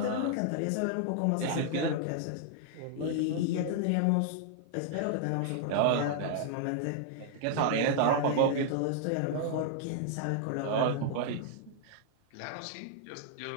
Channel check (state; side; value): different; both; correlation -0.01